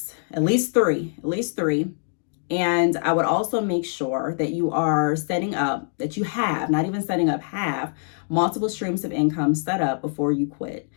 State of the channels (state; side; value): silent; right; digital silence